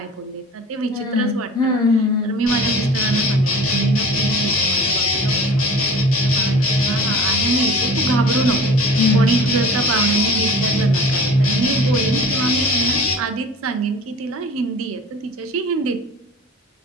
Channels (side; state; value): both; normal; correlation 0.41